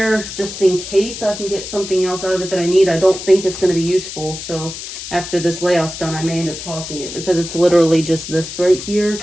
just in case I can get something else out of it that I need. I don't think it's going to be useful. So after this layout's done, I may end up tossing it because it's literally just this right here.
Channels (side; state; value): left; noise; hiss, 9 dB below the sound